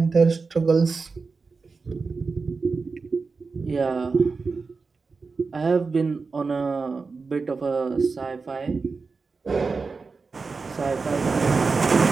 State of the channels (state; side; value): quieter; left; 4.5 dB